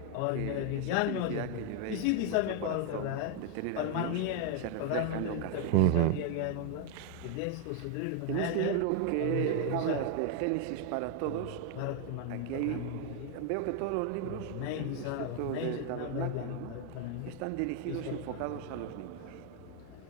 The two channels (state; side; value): different; both; correlation 0.00